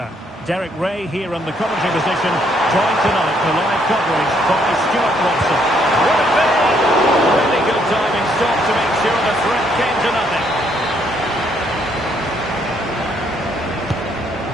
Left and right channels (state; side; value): normal; both; correlation 0.70